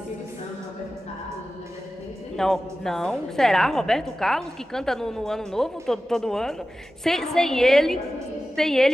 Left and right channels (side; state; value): both; normal; correlation 0.95